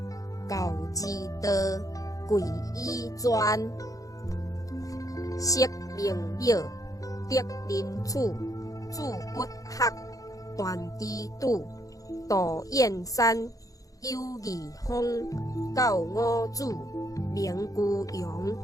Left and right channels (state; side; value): late; right; 0.17 ms